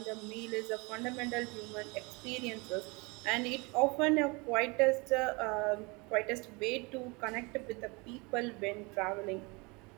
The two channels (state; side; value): quieter; left; 27.8 dB